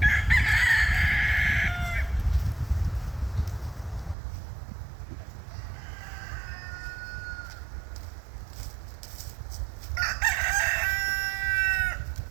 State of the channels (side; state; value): left; drops out; at 4.2 s